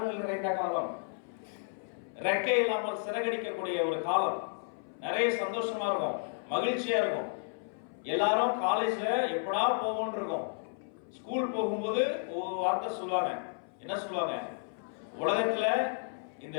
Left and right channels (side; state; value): right; silent; 56 dB below the other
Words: நிறைந்த காலம், ரெக்கை இல்லாமல் சிறகடிக்கக்கூடிய ஒரு காலம். நிறைய சந்தோஷமா இருக்கும், மகிழ்ச்சியா இருக்கும். எல்லாரும் காலேஜ்ல எப்படா போவோம்னு இருக்கும். ஸ்கூல் போகும்போது ஒரு வார்த்தை சொல்லுவாங்க. என்ன சொல்லுவாங்க? உலகத்துல இந்த